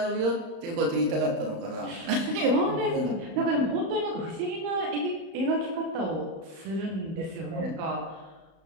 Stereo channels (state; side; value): late; left; 35 ms